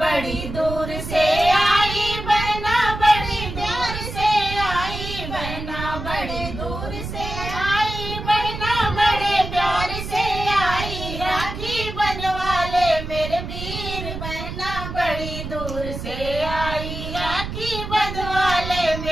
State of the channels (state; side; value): noise; right; rumble, 7 dB below the sound